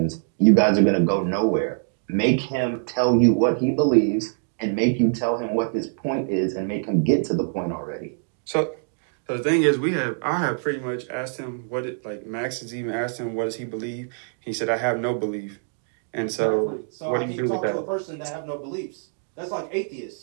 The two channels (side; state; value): left; silent; 62 dB below the other